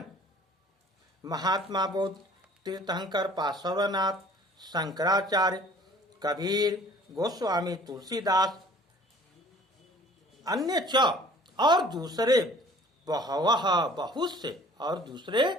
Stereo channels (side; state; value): both; normal; correlation 0.51